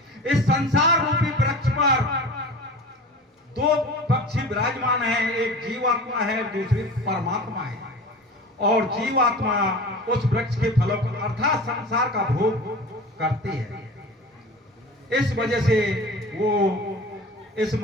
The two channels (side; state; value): both; normal; correlation 0.36